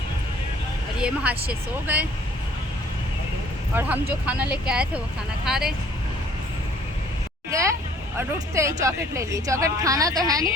और ये महाशय सो गए और हम जो खाना लेके आए थे वो खाना खा रहे गए। और उठते ही चॉकलेट ले लिए। चॉकलेट खाना तो है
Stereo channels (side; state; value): both; normal; correlation 0.57